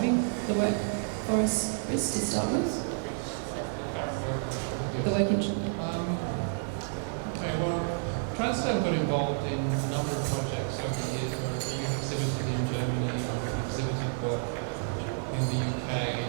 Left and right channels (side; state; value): left; silent; digital silence